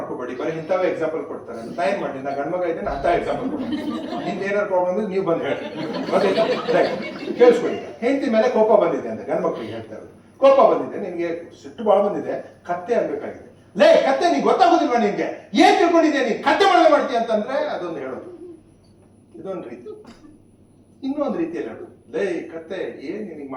ಬರೀ ಇಂಥವೇ ಎಕ್ಸಾಂಪಲ್ ಕೊಡ್ತಾರೆ. ನಾ ಏನ್ ಮಾಡಿ, ನಾ ಗಂಡ್ಮಗ ಇದ್ದೇನೆ ಅಂತ ಎಕ್ಸಾಂಪಲ್ ಕೊಡ್ತೀನಿ. ನಿಮ್ದು ಏನಾದ್ರು ಪ್ರಾಬ್ಲಮ್ ಇದ್ರೆ ನೀವು ಬಂದು ಹೇಳಿ, ಗೊತ್ತಾಯ್ತಾ? ಕೇಳಿಸ್ಕೊಳ್ಳಿ. ಹೆಂಡತಿ ಮೇಲೆ ಕೋಪ ಬಂದಿದೆ ಅಂತ ಗಂಡ್ಮಕ್ಳಿಗೆ ಹೇಳ್ತಾ ಇರೋದು. ಕೋಪ ಬಂದಿದೆ, ನಿನ್ಗೆ ಸಿಟ್ಟು ಭಾಳ ಬಂದಿದೆ, ಕತ್ತೆ ಅನ್ಬೇಕಾಗಿದೆ. ಲೇ ಕತ್ತೆ, ನೀನ್ ಗೊತ್ತಾಗೋದಿಲ್ವಾ ನಿನ್ಗೆ? ಏನ್ ತಿಳ್ಕೊಂಡಿದ್ಯಾ ನೀನ್, ಕತ್ತೆ ಮಾಡದೆ ಮಾಡ್ತೀಯ ಅಂತಂದ್ರೆ ಅದೊಂದು ಹೇಳೋದು, ಇದೊಂದು ರೀತಿ. ಇನ್ನೊಂದು ರೀತಿಯಲ್ಲಿ ಹೇಳೋದು, ಲೇ ಕತ್ತೆ, ಏನ್ ನಿನಗೆ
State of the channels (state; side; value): identical; both; correlation 1.00